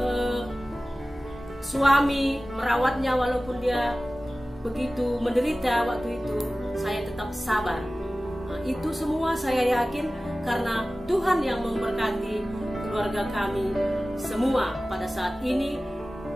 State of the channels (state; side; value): normal; both; correlation 0.96